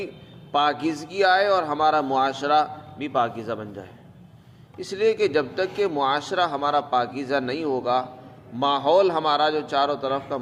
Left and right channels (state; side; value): identical; both; correlation 1.00